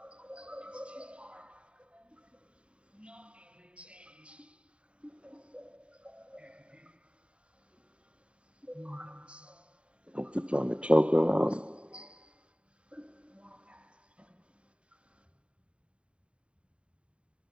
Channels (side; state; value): left; late; 0.058 ms